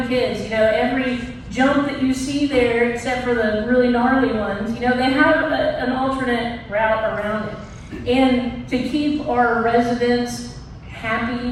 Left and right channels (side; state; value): both; identical; correlation 1.00